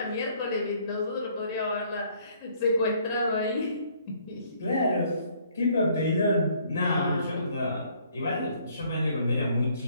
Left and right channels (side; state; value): both; inverted; correlation -0.63